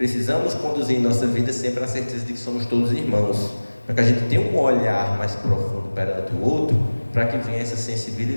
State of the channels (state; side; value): inverted; both; correlation -1.00